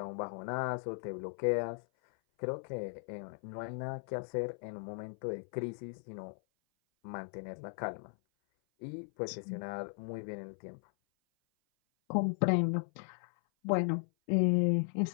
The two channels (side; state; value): right; silent; 53 dB below the other